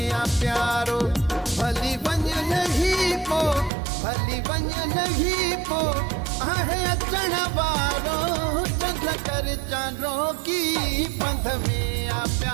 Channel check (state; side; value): drops out; left; at 3.7 s